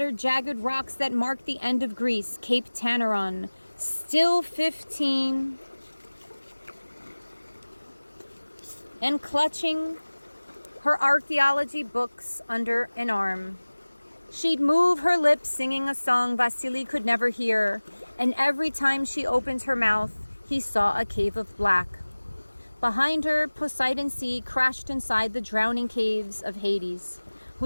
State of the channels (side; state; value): both; inverted; correlation -1.00